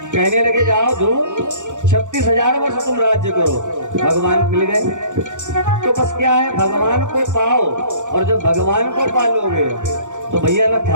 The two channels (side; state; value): left; late; 0.85 ms